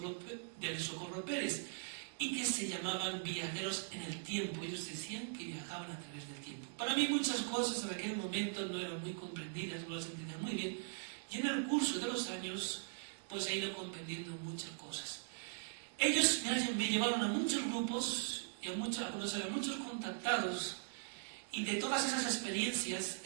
Pérez y que se llamaban viajeros en el tiempo. Ellos decían que viajaban a través del tiempo. Para mí muchas cosas en aquel momento no eran muy comprendidas, no las entendía muy bien, y en el curso de los años pues he ido comprendiendo muchas cosas. Ellos me llevaron a muchos grupos y a conocer a muchos contactados, y de todas esas experiencias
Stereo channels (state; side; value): silent; left; digital silence